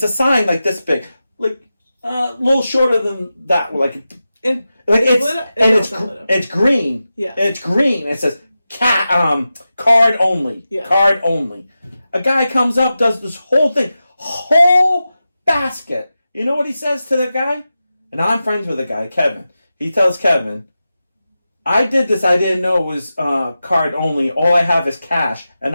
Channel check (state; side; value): inverted; both; correlation -0.92